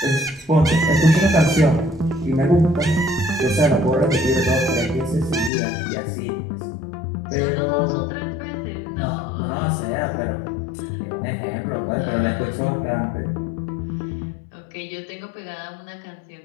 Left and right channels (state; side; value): drops out; right; at 5.5 s